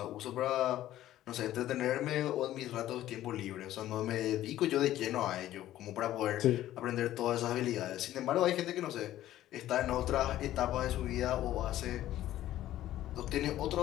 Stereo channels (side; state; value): right; quieter; 13.7 dB